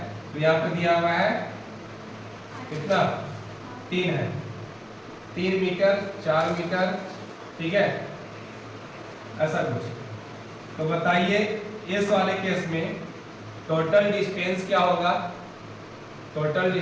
तो यहाँ पे दिया हुआ है कितना 3 है, 3 मीटर 4 मीटर, ठीक है, ऐसा कुछ। तो बताइए इस वाले केस में टोटल डिस्टेंस क्या होगा, टोटल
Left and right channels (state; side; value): identical; both; correlation 1.00